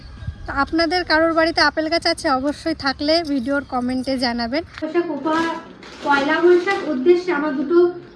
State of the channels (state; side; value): identical; both; correlation 1.00